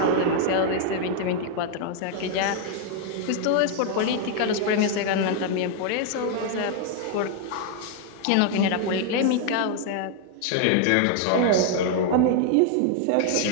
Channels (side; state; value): both; different; correlation 0.00